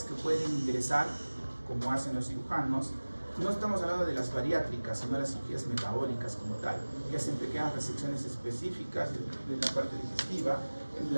que pueden ingresar, como hacen los cirujanos. No estamos hablando de las bariátricas, sino de las cirugías metabólicas como tal, que hacen pequeñas resecciones específicas de la parte digestiva, en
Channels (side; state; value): both; inverted; correlation -1.00